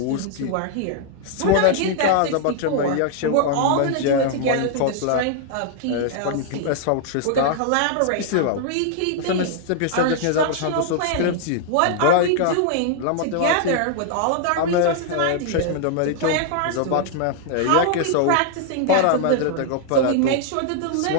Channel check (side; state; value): both; different; correlation 0.00